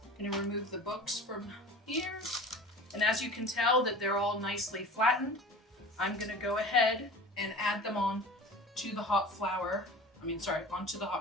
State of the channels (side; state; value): both; normal; correlation 0.38